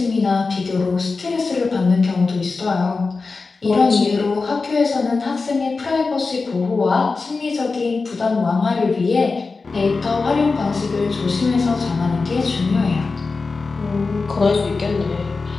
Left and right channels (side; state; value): right; quieter; 4.1 dB